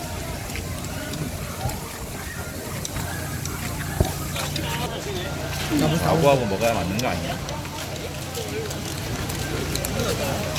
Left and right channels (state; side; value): identical; both; correlation 1.00